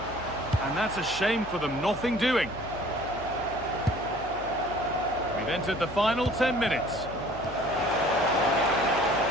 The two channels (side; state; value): left; noise; hum, 16 dB below the sound